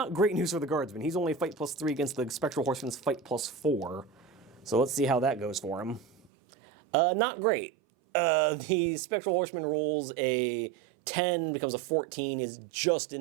great news for the guardsman. He's only fight +3 against the Spectral Horseman's fight +4. So let's see how that goes for him. Not great. The Spectral Horseman rolls a 10, becomes a 14, is just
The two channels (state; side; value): drops out; left; at 6.3 s